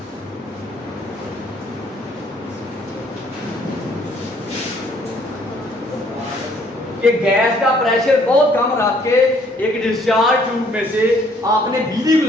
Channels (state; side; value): normal; both; correlation 0.63